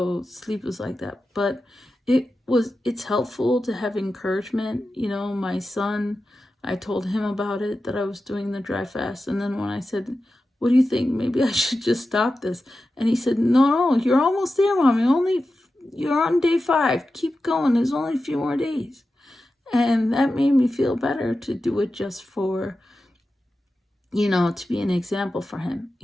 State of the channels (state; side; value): normal; both; correlation 0.92